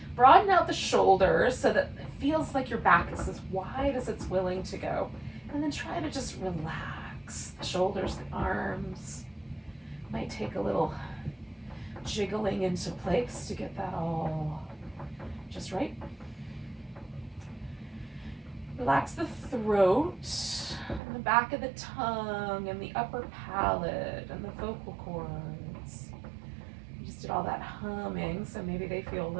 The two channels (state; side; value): drops out; left; at 21.0 s